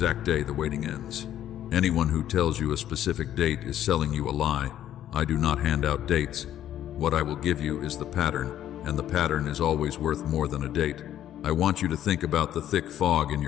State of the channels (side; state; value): right; quieter; 11.5 dB